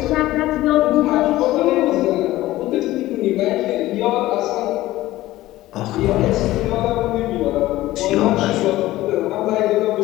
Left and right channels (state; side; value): quieter; right; 16.4 dB